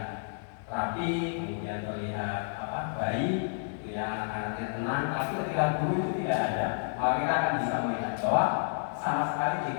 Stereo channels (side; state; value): right; silent; 57 dB below the other